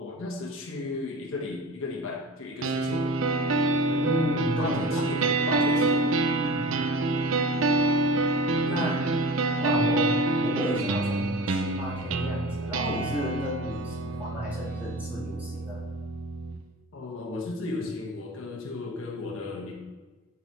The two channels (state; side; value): normal; both; correlation 0.34